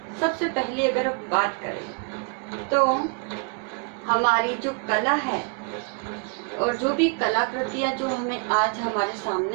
सबसे पहले अगर बात करें तो हमारी जो कला है और जो भी कलाकृतियाँ जो हमें आज हमारे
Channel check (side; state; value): left; quieter; 37.2 dB